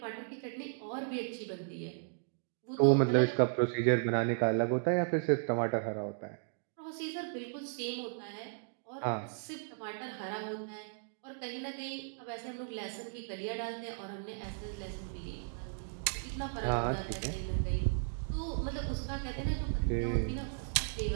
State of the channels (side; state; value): left; silent; digital silence